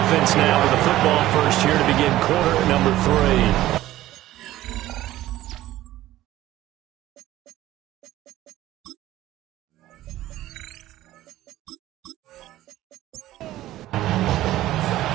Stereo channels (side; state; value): left; quieter; 15.0 dB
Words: now with the football first here to begin quarter number 3.